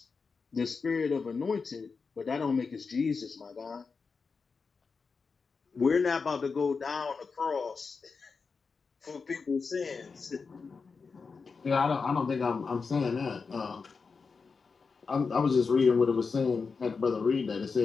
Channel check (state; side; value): quieter; right; 4.9 dB